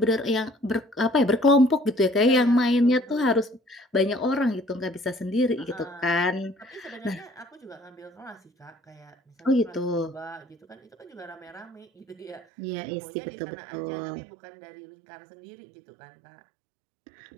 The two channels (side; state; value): left; drops out; at 12.5 s